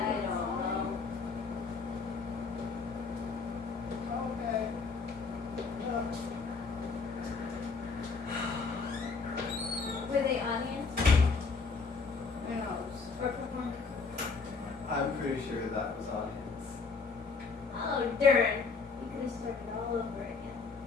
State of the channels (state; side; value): quieter; right; 4.6 dB